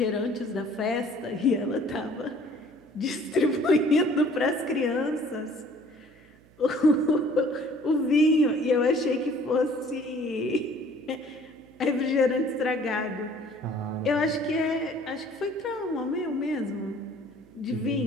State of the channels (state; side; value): noise; right; hum, 28 dB below the sound